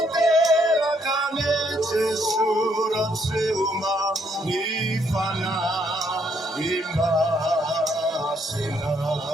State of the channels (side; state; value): both; normal; correlation 0.71